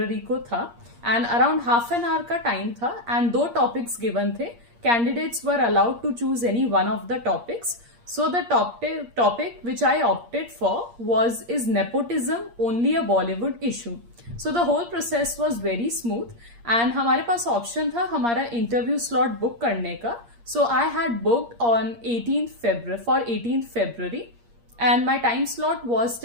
को था and around half an hour का time था एंड दो टॉपिक्स गिवन थे. Candidates were allowed to choose any one of the topics. So the topic which I opted for was is nepotism only a Bollywood issue. So the whole process was very smooth and हमारे पास option था हमारा interview slot book करने का. So I had booked on 18th February and my time slot was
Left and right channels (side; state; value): left; late; 8.5 ms